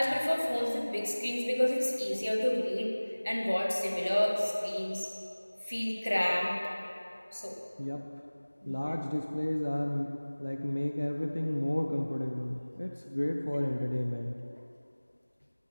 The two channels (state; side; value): inverted; both; correlation -1.00